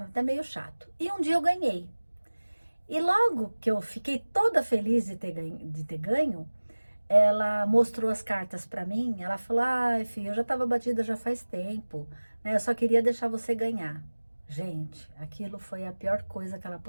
meio chato. E um dia eu ganhei. E logo que eu fiquei toda feliz de ter ganho, ela mostrou as cartas para mim. Ela falou: ai, filha, eu já estava batida já faz tempo, né? Eu só queria deixar você ganhar. Gente, aquilo foi a pior coisa que ela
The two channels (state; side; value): inverted; both; correlation -1.00